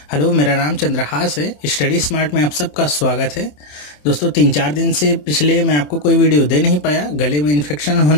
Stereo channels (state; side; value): late; right; 27 ms